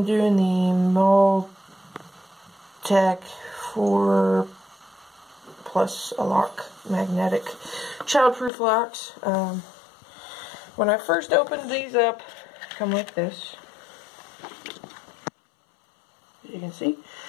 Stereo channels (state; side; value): drops out; right; at 8.5 s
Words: doing the Mauitec 4 plus a lock magnetic childproof locks. When I first opened these up, come like this. As you can see.